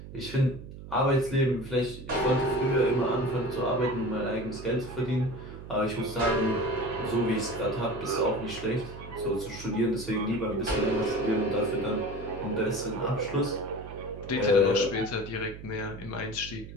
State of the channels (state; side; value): noise; right; hum, 13 dB below the sound